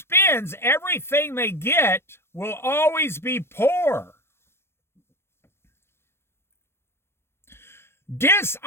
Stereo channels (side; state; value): right; late; 0.12 ms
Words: everything they get will always be poor.